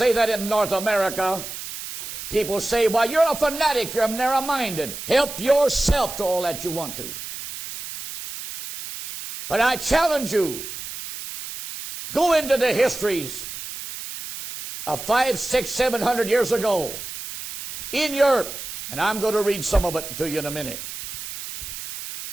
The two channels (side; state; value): right; noise; hiss, 9 dB below the sound